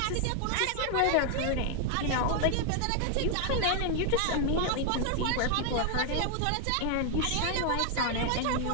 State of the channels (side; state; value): both; different; correlation 0.00